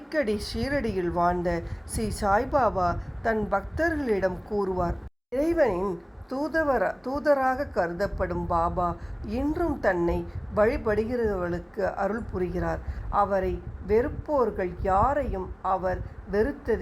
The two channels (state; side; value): identical; both; correlation 1.00